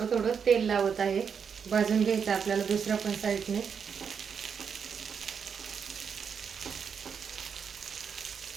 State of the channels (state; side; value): quieter; left; 6.7 dB